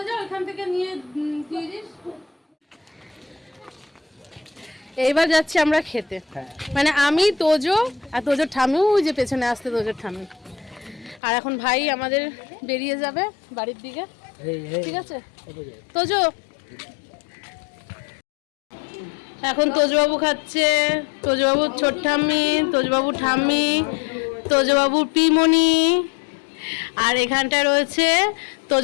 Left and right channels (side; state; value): right; drops out; at 11.2 s